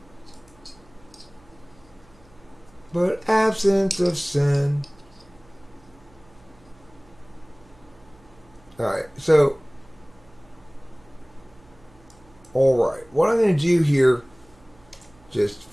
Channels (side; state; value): right; noise; hum, 28 dB below the sound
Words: but absent of sin. Alright, so, alright, what I'm going to do here, just,